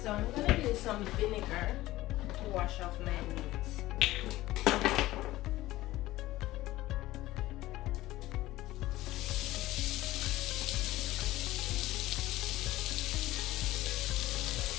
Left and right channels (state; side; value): quieter; right; 16.8 dB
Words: I'm gonna use some vinegar to wash off my meat.